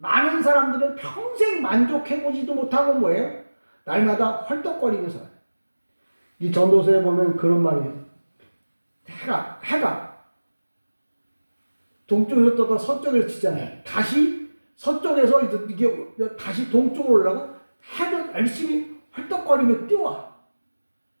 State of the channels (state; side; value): inverted; both; correlation -1.00